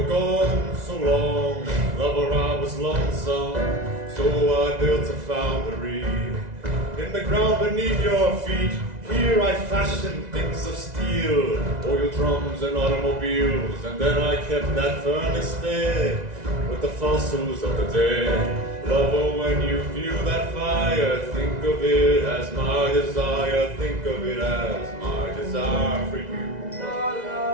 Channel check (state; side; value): late; left; 2.0 ms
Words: gone so long. Lover, I was lonesome. So I built a foundry in the ground beneath your feet. Here I fashioned things of steel, oil drums and automobiles. And then I kept that furnace there with the fossils of the dead. Lover, when you feel that fire, think of it as my desire. Think of it as my desire for you. La